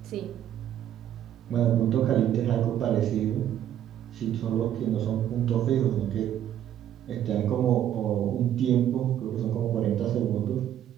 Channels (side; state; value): left; quieter; 10.9 dB